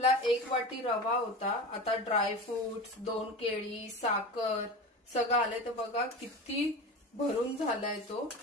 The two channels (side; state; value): both; normal; correlation 0.29